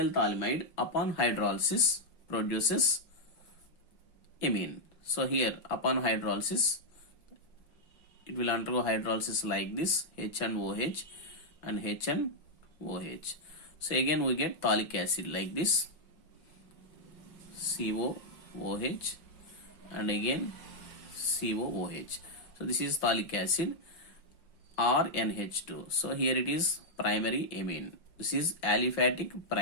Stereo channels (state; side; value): late; right; 5.6 ms